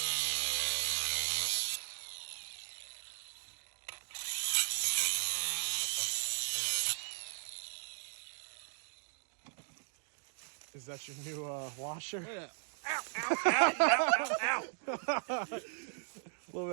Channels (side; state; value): left; silent; digital silence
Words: Is that your new washer? Yeah. A little